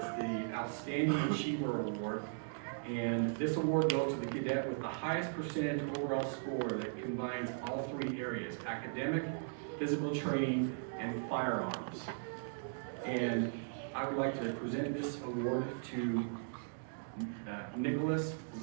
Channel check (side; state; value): left; silent; digital silence